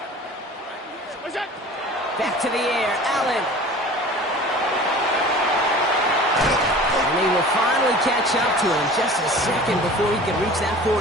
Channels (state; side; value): normal; both; correlation 0.41